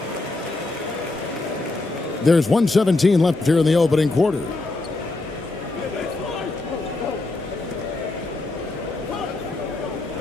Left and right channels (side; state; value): right; quieter; 3.1 dB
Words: There's 1:17 left here in the opening quarter.